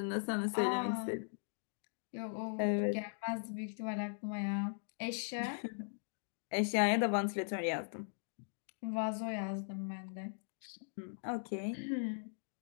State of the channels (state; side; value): silent; right; digital silence